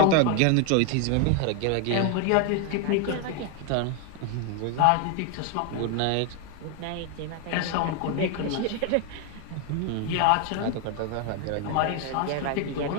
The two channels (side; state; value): both; different; correlation 0.01